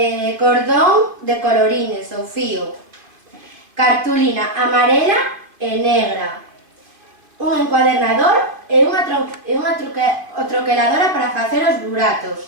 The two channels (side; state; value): left; late; 2.5 ms